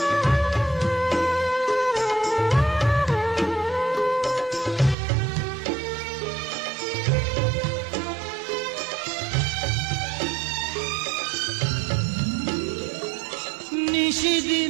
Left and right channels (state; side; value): drops out; left; at 5.0 s